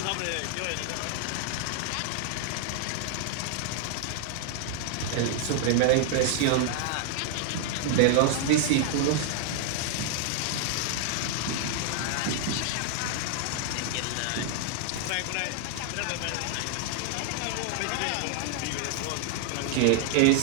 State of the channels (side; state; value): both; different; correlation 0.00